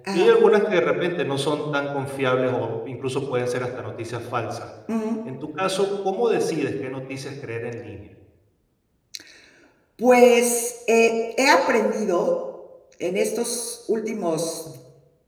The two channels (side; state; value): both; identical; correlation 1.00